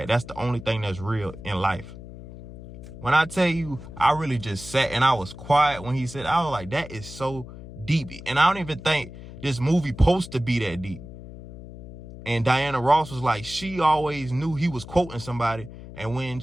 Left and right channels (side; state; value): left; noise; hum, 14 dB below the sound